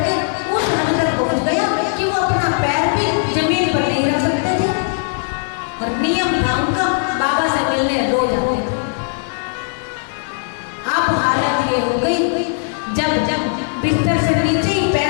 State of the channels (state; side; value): silent; right; 67 dB below the other